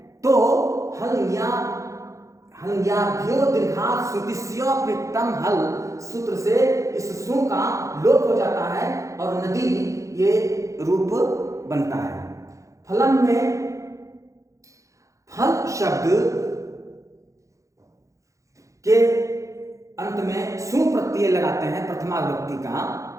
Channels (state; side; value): late; left; 0.15 ms